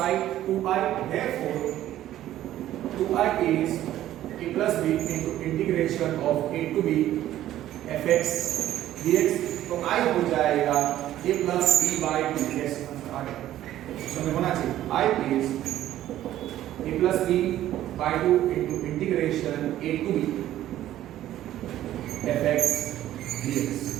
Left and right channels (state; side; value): quieter; left; 13.1 dB